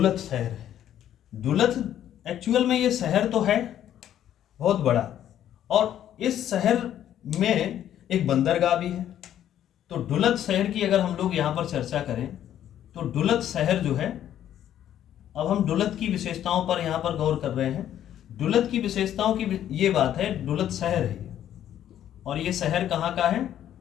शहर है। डुलत एक्चुअल में ये शहर तो है बहुत बड़ा, और इस शहर में एक बंदरगाह भी है। तो डुलत शहर की अगर हम लोग यहाँ पर चर्चा करें तो डुलत शहर जो है, अब हम डुलत की विशेषताओं पर यहाँ पर गौर कर रहे हैं। डुलत की विशेषताओं की ये बात है, डुलत शहर है और ये शहर कहाँ का है?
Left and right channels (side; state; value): right; quieter; 11.0 dB